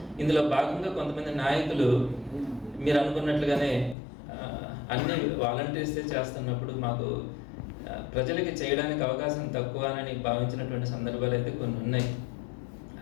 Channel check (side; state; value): right; drops out; at 4.0 s